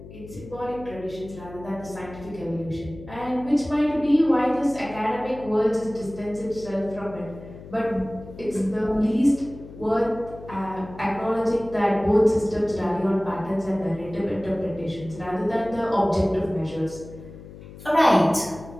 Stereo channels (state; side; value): noise; left; hum, 16 dB below the sound